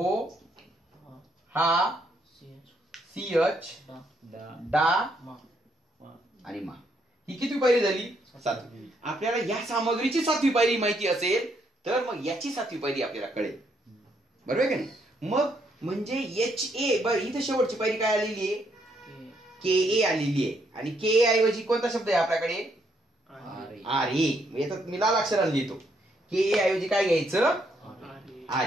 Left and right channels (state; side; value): normal; both; correlation 0.73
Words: हा, सीएच, डा आणि मा. ही किती पायरी झाली? 7वी. आपल्याला या सामग्रीची 7वी पायरी माहिती असेल तर मग याची 7वी पायरी आपल्याला कळेल. बरोबर आहे का नाही? मग म्हणजे एच ए, बरं इथे शेवटची पायरी काय आलेली आहे, के ए आलेली आहे. आणि के ए ऐवजी कोणता शब्द आहे आपल्याकडे? R A. याच्यात मी लाल अक्षराने लिहितो. के ए ऐवजी काय घ्यायचं? R